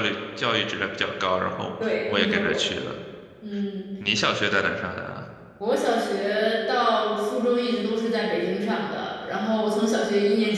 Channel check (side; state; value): both; identical; correlation 1.00